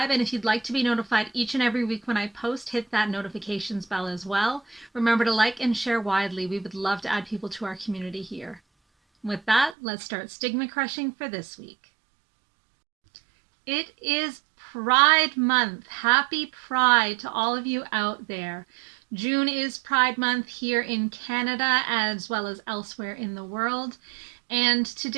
and if you'd like to be notified each and every week when I post, hit that notifications bell as well. Remember to like and share widely. We would love to add people to our community here. With that, let's start stigma crushing for this week. It is Pride Month. Happy Pride to all of you out there. June is Pride Month here in Canada as well as elsewhere in the world. And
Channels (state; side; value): drops out; left; at 9.8 s